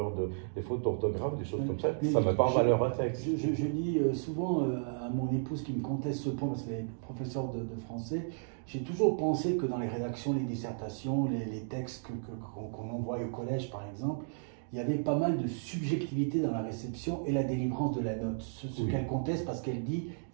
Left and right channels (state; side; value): silent; left; digital silence